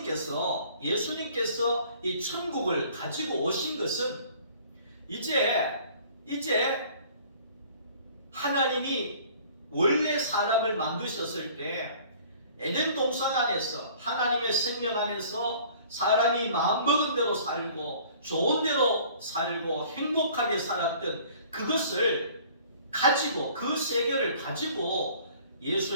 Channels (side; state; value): both; inverted; correlation -0.52